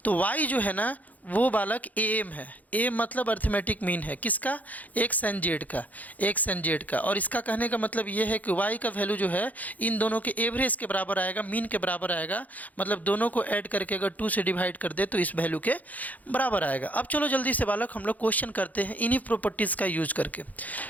तो y जो है ना वो बालक AM है। AM मतलब अर्थमेटिक मीन है किसका? एक्स एंड जेड का। और इसका कहने का मतलब ये है कि y का वैल्यू जो है इन दोनों के एवरेज के बराबर आएगा, मीन के बराबर आएगा। मतलब दोनों को ऐड करके अगर 2 से डिवाइड कर दे तो इस वैल्यू के बराबर आएगा। अब चलो जल्दी से बालक हम लोग क्वेश्चन करते हैं इन्हीं प्रॉपर्टीज़ का यूज करके,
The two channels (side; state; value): right; late; 0.078 ms